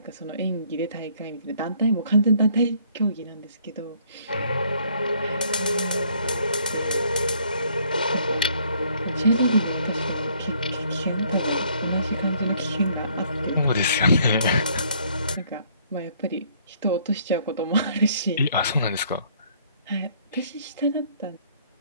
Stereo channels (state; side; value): inverted; both; correlation -0.63